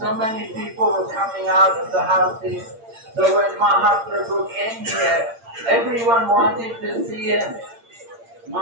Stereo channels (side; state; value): left; late; 8.7 ms